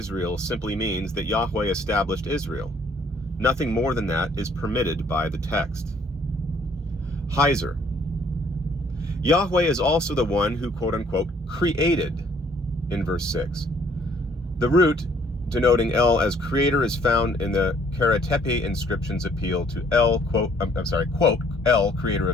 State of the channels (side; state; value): both; normal; correlation 0.62